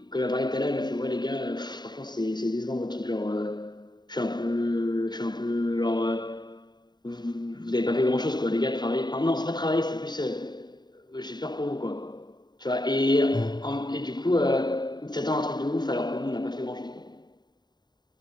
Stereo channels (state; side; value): late; right; 0.21 ms